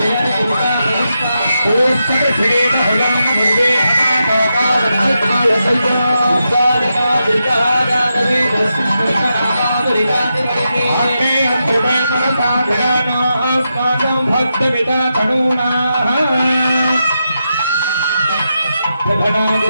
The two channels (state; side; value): inverted; both; correlation -0.86